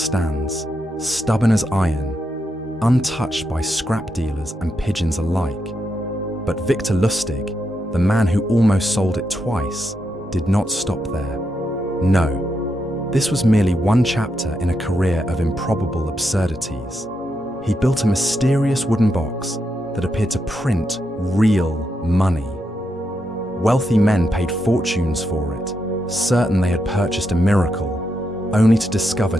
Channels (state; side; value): normal; both; correlation 0.83